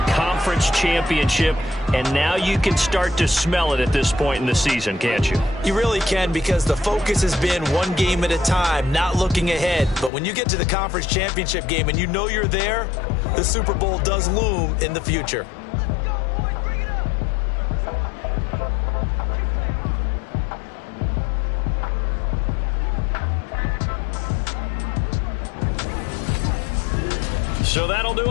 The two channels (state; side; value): drops out; right; at 10.1 s